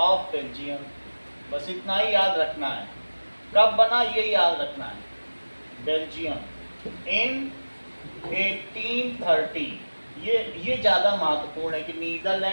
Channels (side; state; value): both; inverted; correlation -1.00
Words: ऑफ बेल्जियम. बस इतना ही याद रखना है. कब बना ये याद रखना है. बेल्जियम इन 1830. ये ज्यादा महत्वपूर्ण है कि